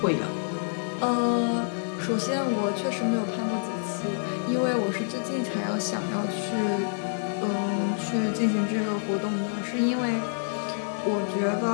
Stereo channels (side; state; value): right; silent; digital silence